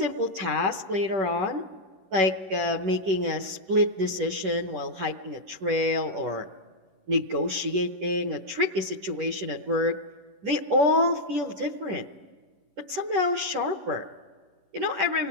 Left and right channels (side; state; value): left; late; 11 ms